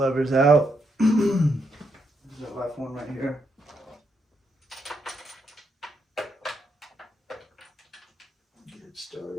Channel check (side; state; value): both; normal; correlation 0.79